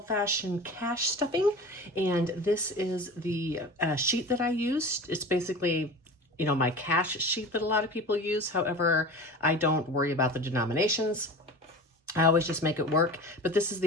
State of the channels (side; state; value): both; normal; correlation 0.34